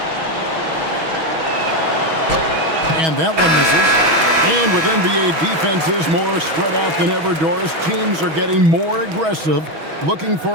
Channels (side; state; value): left; late; 6.2 ms